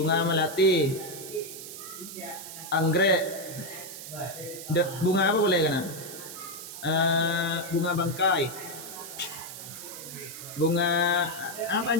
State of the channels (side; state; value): right; noise; hiss, 11 dB below the sound